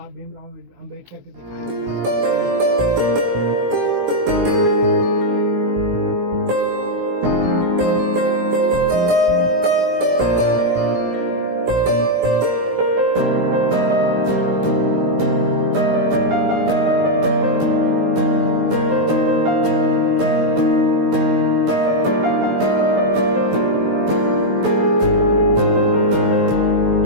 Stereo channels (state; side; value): late; left; 16 ms